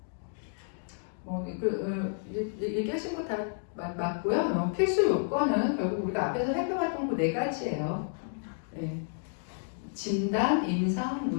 얘기하신 거 다 맞고요. 필수 요건은 결국 우리가 앞에서 살펴봤던 그 네 가지예요. 네. 진단, 임상,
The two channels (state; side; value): silent; right; digital silence